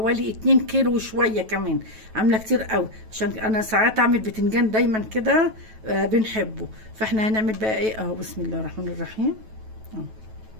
2 كيلو وشويه كمان. عامله كتير قوي عشان انا ساعات اعمل بتنجان دايما كده بنحبه. فاحنا هنعمل بقى ايه اهو. بسم الله الرحمن الرحيم اهو.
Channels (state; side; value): late; left; 9.2 ms